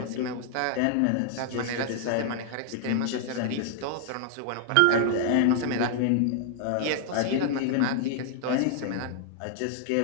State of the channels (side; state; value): both; different; correlation 0.00